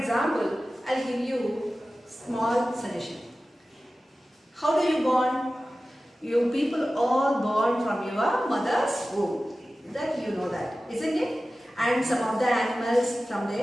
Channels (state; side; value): normal; both; correlation 0.95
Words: I'll give you small suggestion. How do you born? You people all born from your mother's womb. That you know that, isn't it? And some of the animals from